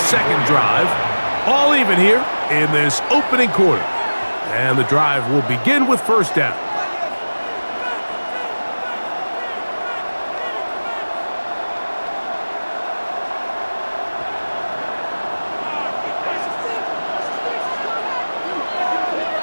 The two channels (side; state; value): both; inverted; correlation -1.00